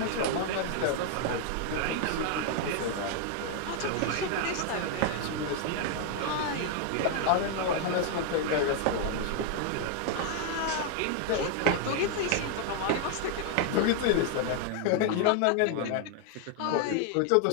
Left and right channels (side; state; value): both; different; correlation 0.00